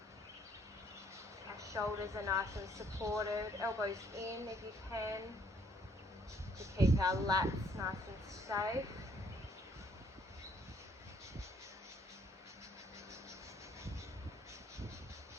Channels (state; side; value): normal; both; correlation 0.65